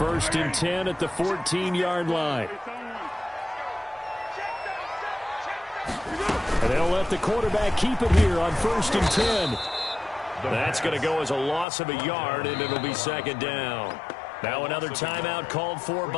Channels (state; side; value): drops out; right; at 11.7 s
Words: and 10 at the 14-yard line. And they'll let the quarterback keep it here on 1st and 10. That's going to go as a loss of a yard, and it'll be 2nd down. Now another timeout called for